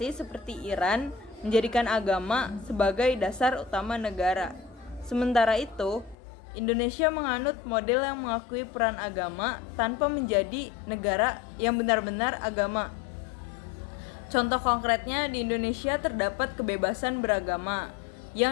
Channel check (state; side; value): drops out; right; at 6.2 s